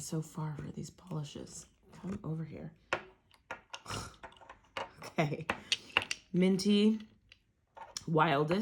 far for these polishes. Come over here. Okay. Minty.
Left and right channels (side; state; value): both; identical; correlation 1.00